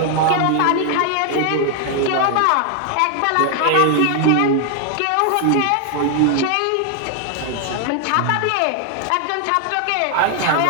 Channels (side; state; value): both; different; correlation 0.00